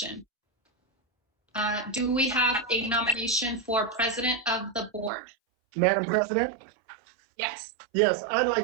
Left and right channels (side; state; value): left; drops out; at 5.1 s